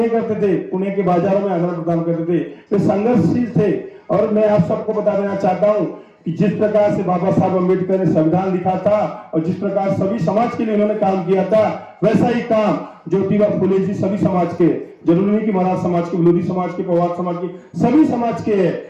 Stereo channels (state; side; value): identical; both; correlation 1.00